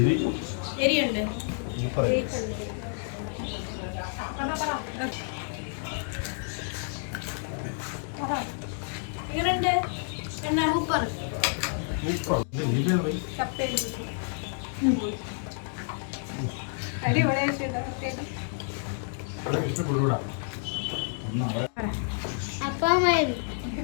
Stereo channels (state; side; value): silent; right; 58 dB below the other